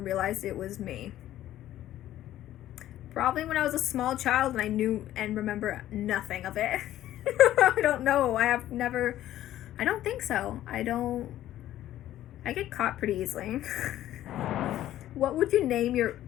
realized it was me? Probably when I was a small child and I knew and remember nothing of it. I don't know. I don't think so. I get caught pretty easily. What would you name your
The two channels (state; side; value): quieter; right; 13.2 dB